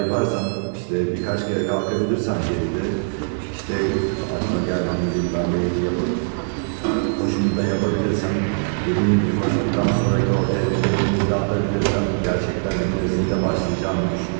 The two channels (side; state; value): left; silent; digital silence